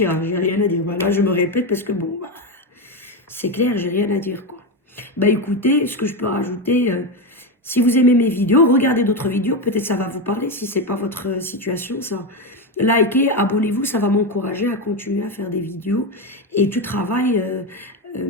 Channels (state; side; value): normal; both; correlation 0.12